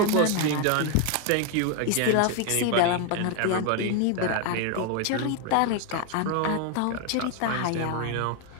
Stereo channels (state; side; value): different; both; correlation 0.01